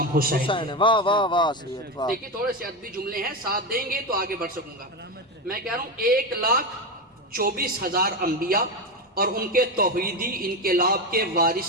حسین ہے۔ واہ واہ واہ سید واہ۔ دیکھیں تھوڑے سے ادبی جملے ہیں، ساتھ دیں گے تو آگے بڑھ سکوں گا۔ میں کہہ رہا ہوں 1,24,000 انبیاء اور ان کے توحیدی انقلاب کے وارث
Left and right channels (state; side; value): normal; both; correlation 0.15